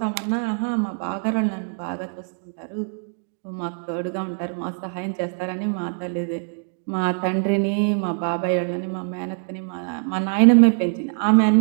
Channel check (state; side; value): silent; left; 63 dB below the other